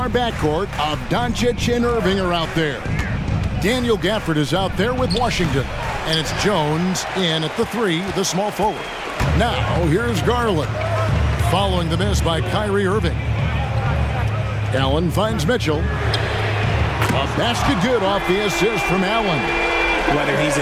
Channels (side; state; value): both; identical; correlation 1.00